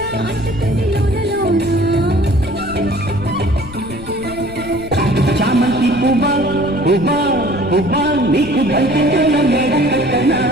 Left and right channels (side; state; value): left; noise; rumble, 15 dB below the sound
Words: చామంతి పువ్వా పువ్వా పువ్వా నీకు బంతిలో మేడ కట్టనా